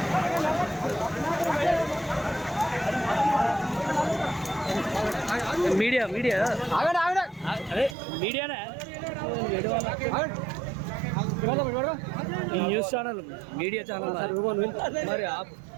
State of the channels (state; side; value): drops out; left; at 8.0 s